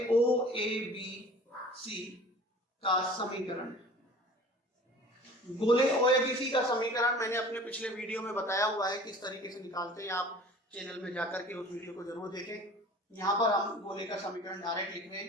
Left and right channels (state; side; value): normal; both; correlation 0.44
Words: O, A, B, C का समीकरण। गोले O, A, B, C का समीकरण मैंने अपने पिछले वीडियो में बताया हुआ है किस तरीके से निकालते हैं। आप चैनल में जाकर के उस वीडियो को जरूर देखें। यहाँ पर हम गोले का समीकरण डायरेक्ट लिख रहे